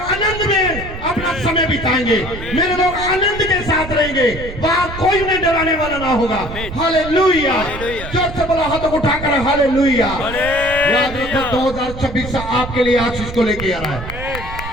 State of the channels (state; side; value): noise; right; rumble, 10 dB below the sound